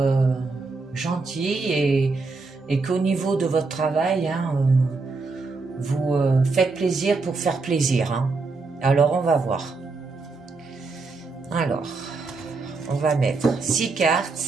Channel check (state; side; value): quieter; left; 3.9 dB